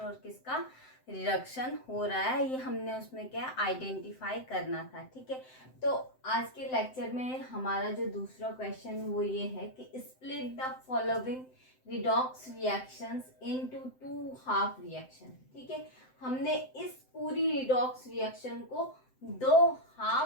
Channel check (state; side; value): late; right; 7.8 ms